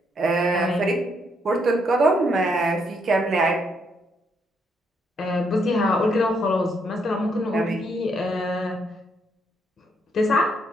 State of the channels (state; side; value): normal; both; correlation 0.74